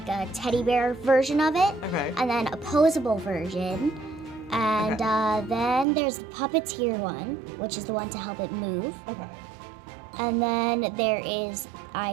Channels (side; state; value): left; drops out; at 5.9 s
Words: a teddy bear version of it. Okay. And then a posable version. And then there's the puppeteer one, which is the one to help it move. Okay. And then there is, I